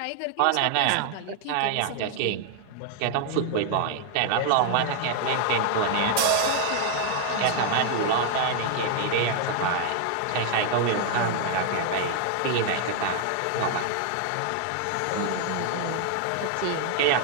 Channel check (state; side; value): different; both; correlation 0.00